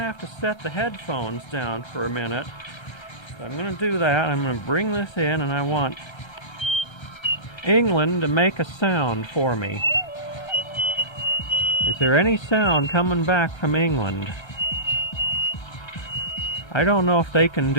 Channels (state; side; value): late; right; 1.3 ms